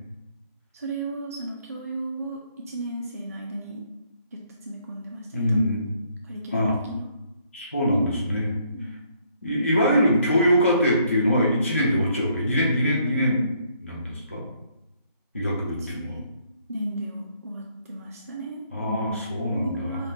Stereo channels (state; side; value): inverted; both; correlation -0.68